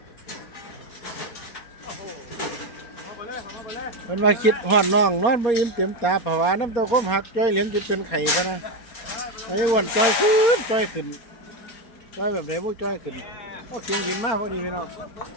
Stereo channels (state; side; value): late; right; 4.2 ms